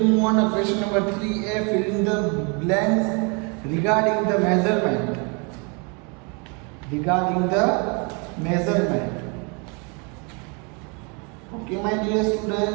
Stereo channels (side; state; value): left; quieter; 33.3 dB